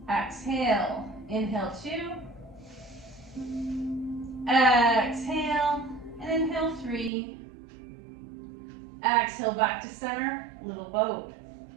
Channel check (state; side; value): drops out; left; at 7.1 s